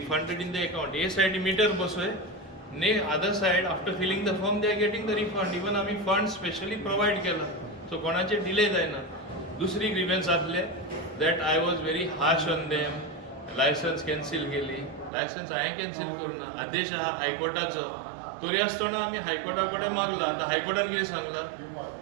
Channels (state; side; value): drops out; left; at 15.1 s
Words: in the account. A side meter बसोय, ने other side after filling the form they are getting the refund. Even आम्ही fund specially provide केला, so कोणाचे delay जायना. दुसरी grievance आसले that I was very harsh on them. Licence cancel केली. लायसन्स हांवें कॅन्सील करूना. आदेश आहा हायकोर्टाचो, तरी आसतना आमी हायकोर्टा कडेन मागला. आतां हायकोर्टान कितें सांगला,